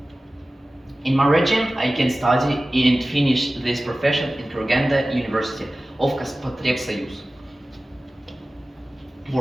In my region, I can study and finish this profession in Kurganda University of Kazakh.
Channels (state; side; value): normal; both; correlation 0.96